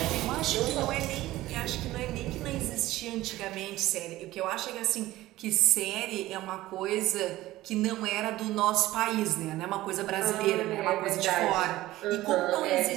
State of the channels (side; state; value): left; quieter; 16.5 dB